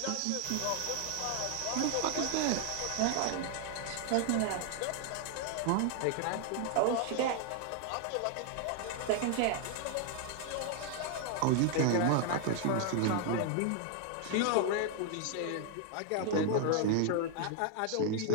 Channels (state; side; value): different; both; correlation 0.00